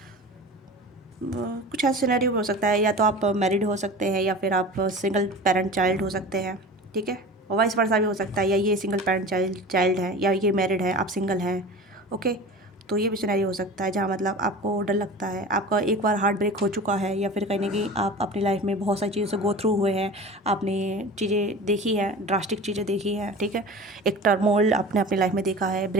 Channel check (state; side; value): normal; both; correlation 0.36